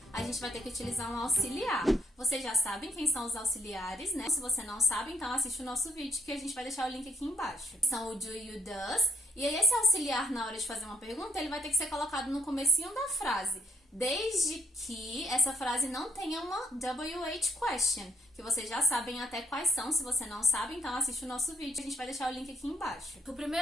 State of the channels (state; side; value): normal; both; correlation 0.70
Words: A gente vai ter que utilizar um auxiliar. Vocês já sabem quem são os auxiliares, né? Se você não sabe, então assiste o nosso vídeo que a gente vai deixar o link aqui embaixo. São o do e o does. E aí esse auxiliar, na hora de fazer uma pergunta, ele vai ter que ser colocado no comecinho da frase. Desde que essa frase não tenha uma WH question, que vocês já sabem até quais são. Se você não sabe, então assiste o nosso vídeo. A gente vai deixar o link aqui embaixo. O